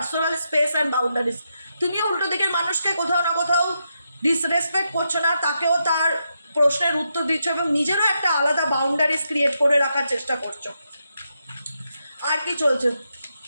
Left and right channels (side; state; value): both; inverted; correlation -0.84